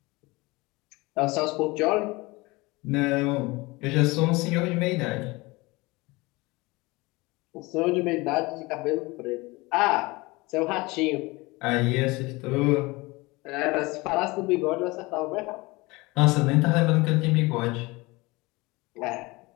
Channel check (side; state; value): right; quieter; 23.3 dB